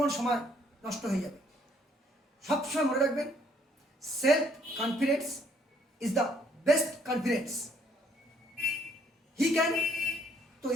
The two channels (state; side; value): normal; both; correlation 0.65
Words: সময় নষ্ট হয়ে যাবে। সবসময় মনে রাখবেন, self confidence is the best confidence. He can তো